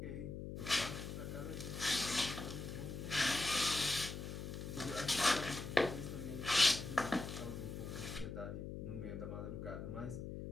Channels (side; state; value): left; noise; hum, 6 dB below the sound